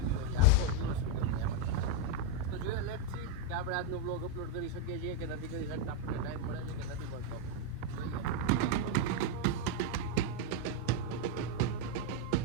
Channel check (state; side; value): different; both; correlation 0.02